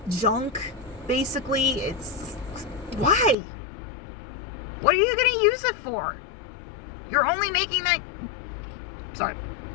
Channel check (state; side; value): drops out; right; at 3.4 s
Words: junk. Basically, it's why? What are you going to use it for? You're only making that. Sorry,